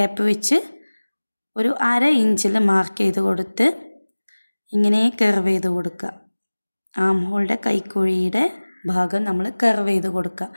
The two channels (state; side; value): inverted; both; correlation -1.00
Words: വെച്ച് ഒരു 1/2 ഇഞ്ചിൽ മാർക്ക് ചെയ്ത് കൊടുത്ത് ഇങ്ങനെ കർവ് ചെയ്ത് കൊടുക്കുക. ആം ഹോളിൻ്റെ കൈക്കുഴിയുടെ ഭാഗം നമ്മൾ കർവ് ചെയ്ത് കൊടുക്കുക.